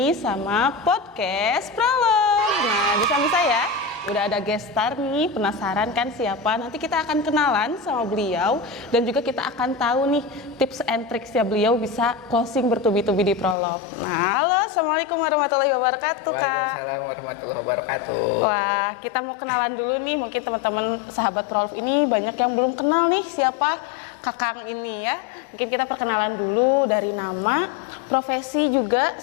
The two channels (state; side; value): drops out; right; at 13.6 s